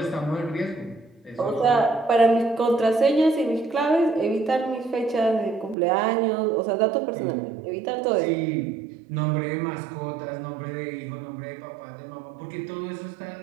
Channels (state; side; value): drops out; left; at 5.8 s